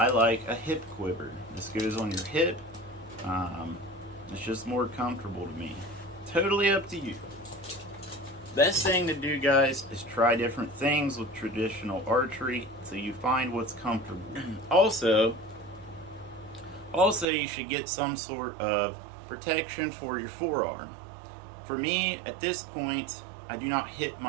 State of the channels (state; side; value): drops out; left; at 17.2 s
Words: like a hip quiver. This goes on your hip. It's just more comfortable to me. Totally up to you. Best thing to do, guys, is try different things with traditional archery so you find what's comfortable. Also, you should get some sort of protection for your forearm. For me, at this point, I do not hit